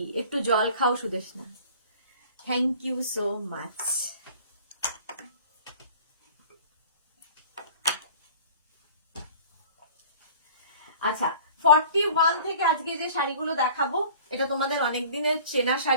একটু জল খাও Sudeshna, thank you so much. আচ্ছা, 41 থেকে আজকে যে শাড়িগুলো দেখাবো, এটা তোমাদের অনেক দিনের চেনা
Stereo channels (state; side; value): inverted; both; correlation -0.46